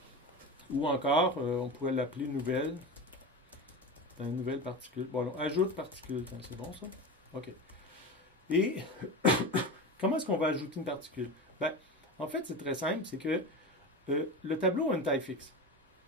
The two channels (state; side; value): normal; both; correlation 0.26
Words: Ou encore, on pourrait l'appeler nouvelle. Une nouvelle particule. Bon, alors, ajoute particule. C'est bon, ça? OK. Et comment est-ce qu'on va ajouter une particule? Ben, en fait, c'est très simple. C'est que le tableau a une taille fixe.